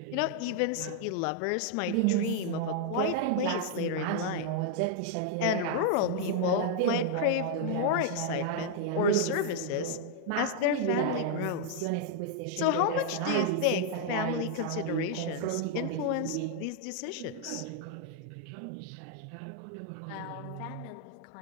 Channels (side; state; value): both; different; correlation 0.00